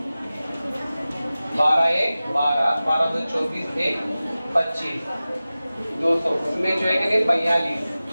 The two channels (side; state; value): both; inverted; correlation -0.96